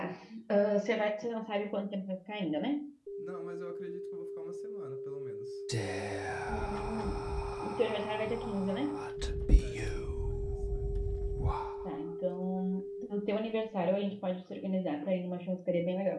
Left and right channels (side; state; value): both; identical; correlation 1.00